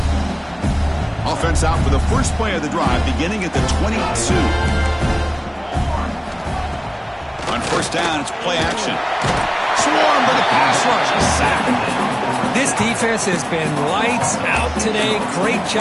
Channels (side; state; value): both; identical; correlation 1.00